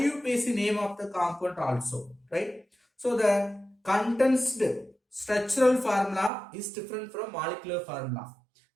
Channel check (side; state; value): left; drops out; at 6.3 s